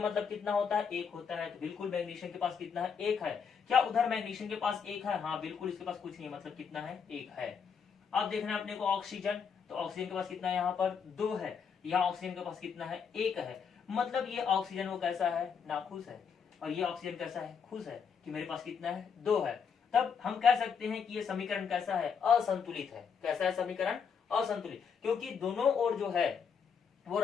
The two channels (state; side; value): quieter; right; 6.5 dB